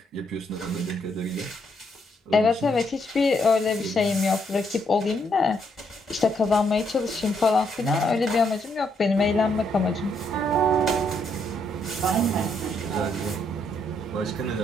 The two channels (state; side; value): normal; both; correlation 0.74